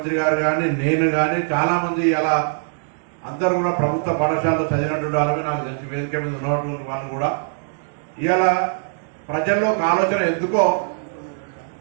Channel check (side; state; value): left; silent; digital silence